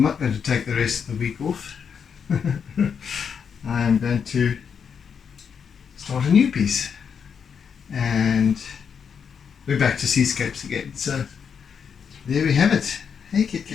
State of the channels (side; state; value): right; quieter; 6.8 dB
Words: going to take the rest of the week off. I'm going to start a new piece, and we're back to seascapes again. So there we have it. Hey Kit